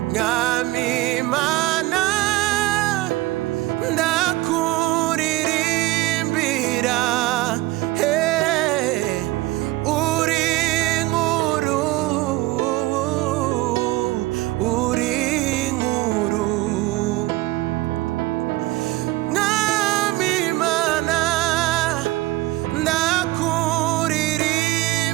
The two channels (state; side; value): quieter; left; 18.8 dB